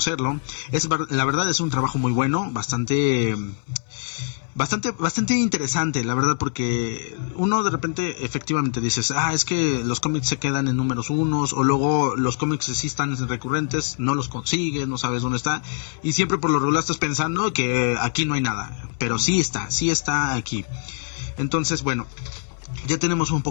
La verdad es un trabajo muy bueno, bastante interesante, la verdad, porque uno de repente efectivamente dices, es que los cómics se quedan en números unos, o luego los cómics sí están recurrentes, no los consigues, no sabes dónde está, y siempre por lo regular estás pensando que aquí no hay nada, pero sí está aquí. Entonces, bueno, ya tenemos un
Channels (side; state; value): right; silent; 58 dB below the other